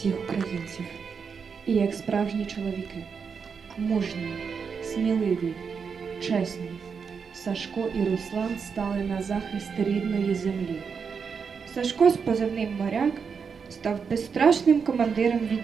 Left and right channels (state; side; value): quieter; left; 6.0 dB